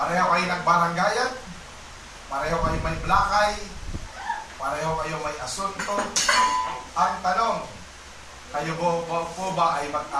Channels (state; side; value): identical; both; correlation 1.00